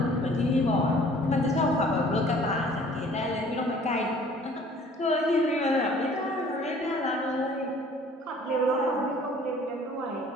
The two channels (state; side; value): normal; both; correlation 0.53